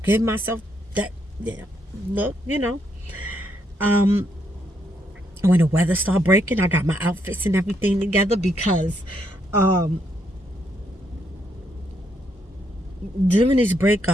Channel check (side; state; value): both; normal; correlation 0.76